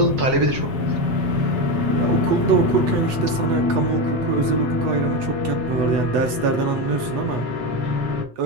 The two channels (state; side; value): late; left; 8.3 ms